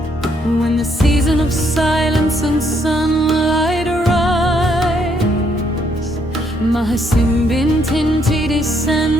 When the season of silence and sunlight arrives, Mahasimbintinti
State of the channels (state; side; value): normal; both; correlation 0.72